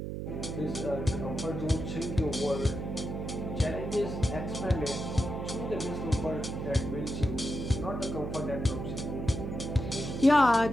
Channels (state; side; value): noise; right; hum, 5 dB below the sound